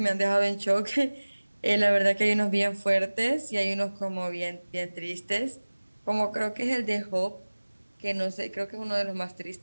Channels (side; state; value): both; inverted; correlation -1.00